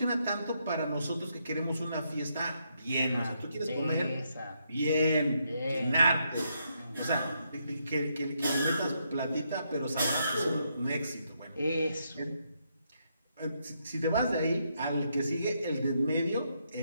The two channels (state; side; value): inverted; both; correlation -0.78